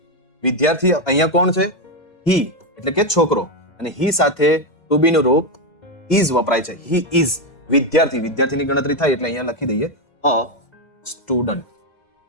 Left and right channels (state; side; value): late; right; 2.0 ms